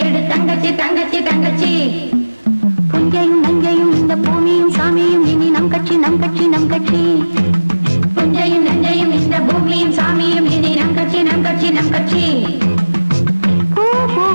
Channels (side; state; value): both; inverted; correlation -1.00